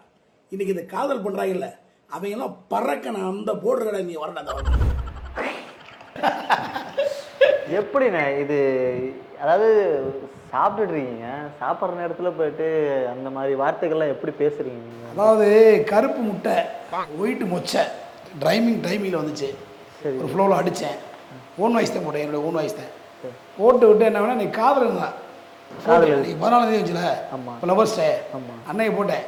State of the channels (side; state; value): both; identical; correlation 1.00